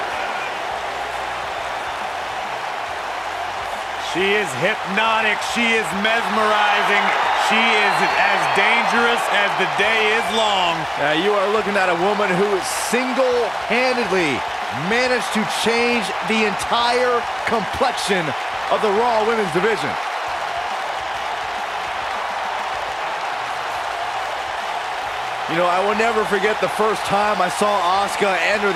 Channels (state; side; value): identical; both; correlation 1.00